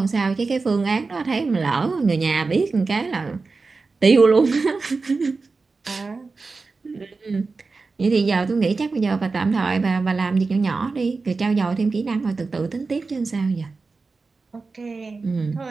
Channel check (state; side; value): quieter; left; 4.1 dB